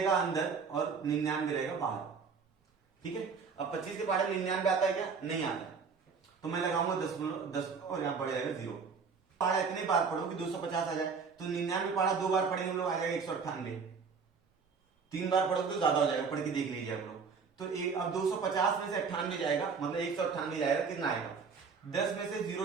अंदर और 99 रहेगा बाहर। ठीक है, अब 25 के पहाड़े 99 आता है क्या, नहीं आता है, तो मैं लगाऊंगा दशमलव और यहां पड़ जाएगा 0। पहाड़ा इतने बार पढ़ो कि 250 आ जाए, तो 99 पहाड़ा 2 बार पढ़ेंगे हम लोग, आ जाएगा 198। 3 बार पढ़ो तो ज्यादा हो जाएगा, पढ़ के देख लीजिए आप लोग। तो अब 250 में से 98 जाएगा, मतलब 198 जाएगा, कितना आएगा, 10 में से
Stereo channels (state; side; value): quieter; left; 5.5 dB